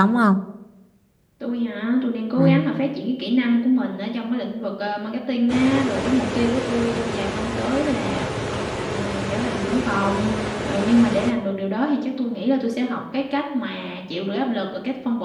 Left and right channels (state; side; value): identical; both; correlation 1.00